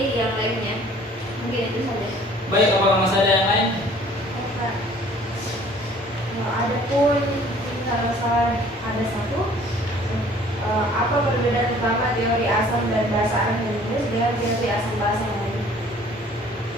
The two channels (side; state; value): both; normal; correlation 0.53